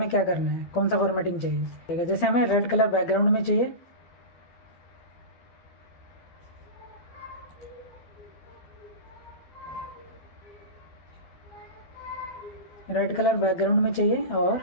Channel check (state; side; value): late; right; 12 ms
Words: क्या करना है, कौन सा फॉर्मेटिंग चाहिए। जैसे हमें रेड कलर बैकग्राउंड में चाहिए, रेड कलर बैकग्राउंड में चाहिए, और